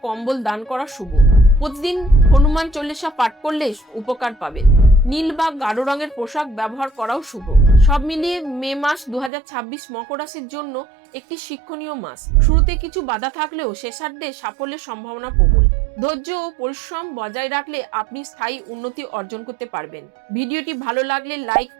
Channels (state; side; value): drops out; left; at 9.3 s